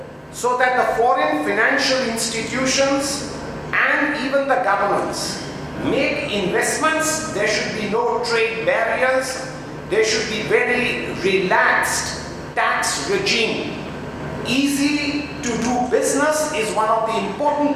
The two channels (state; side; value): identical; both; correlation 1.00